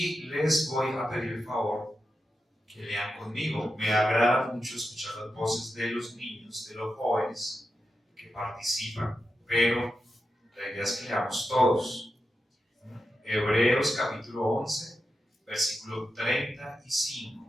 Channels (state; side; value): normal; both; correlation 0.89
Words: les voy a pedir el favor que lean conmigo. Me agrada mucho escuchar las voces de los niños, de los jóvenes que participan, pero la idea es que leamos todos. Hebreos capítulo 11, versículo